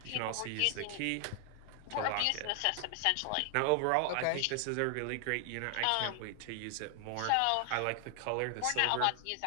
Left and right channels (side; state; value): both; different; correlation 0.00